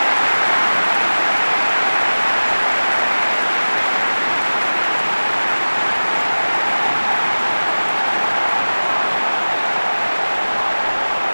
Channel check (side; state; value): both; inverted; correlation -1.00